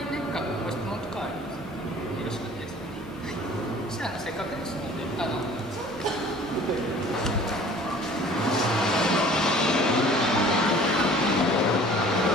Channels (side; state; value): both; normal; correlation 0.49